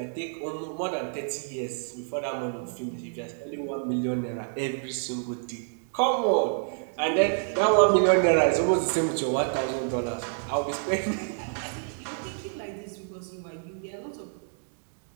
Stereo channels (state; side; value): silent; left; digital silence